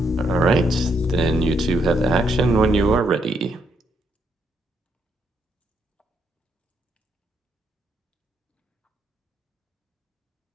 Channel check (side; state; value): both; normal; correlation 0.76